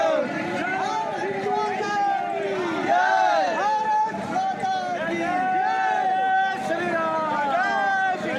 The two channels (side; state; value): both; identical; correlation 1.00